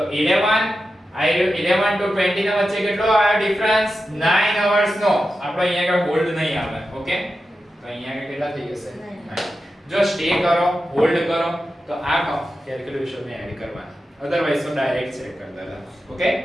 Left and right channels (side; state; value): both; normal; correlation 0.91